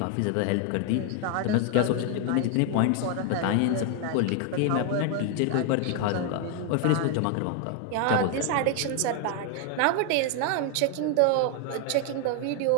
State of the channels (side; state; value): both; different; correlation 0.00